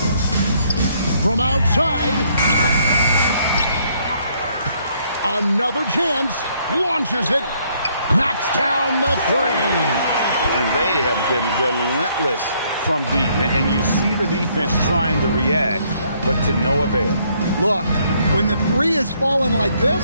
from outside. Another chance. Launches it. Knocks down the three. And they have been relentless from deep. And you see the defense trying to react, but to no avail. Look, when the three is falling like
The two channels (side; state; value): both; inverted; correlation -0.68